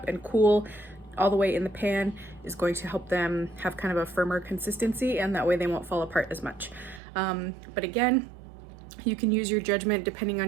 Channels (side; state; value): left; drops out; at 7.0 s